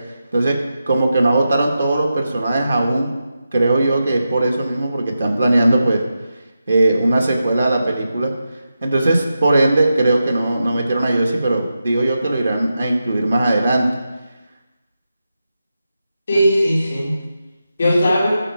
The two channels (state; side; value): inverted; both; correlation -0.89